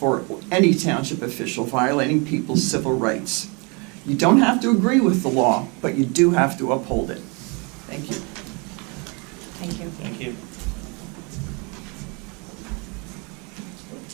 any township official violating people's civil rights. You don't have to agree with the law, but you do have to uphold it. Thank you. Thank you. Thank you.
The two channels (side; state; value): left; quieter; 31.3 dB